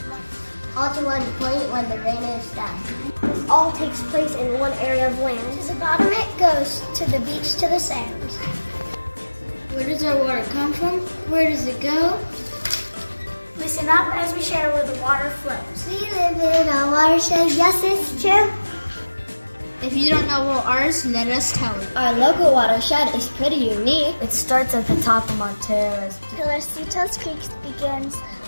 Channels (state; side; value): inverted; both; correlation -1.00